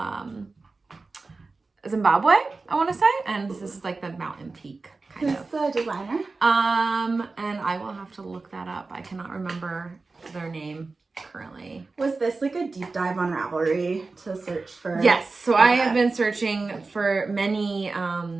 Zimbabwe, I want to say, and this is like the mountain peak. Who's the designer? And I will have to look that up. I cannot remember their name currently. Was this like a deep dive on Ravelry to search for? Yes. So I have been searching for many.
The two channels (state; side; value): quieter; left; 3.8 dB